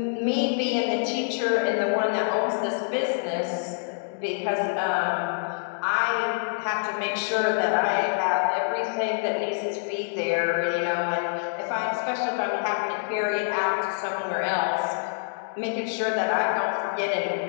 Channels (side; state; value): right; silent; digital silence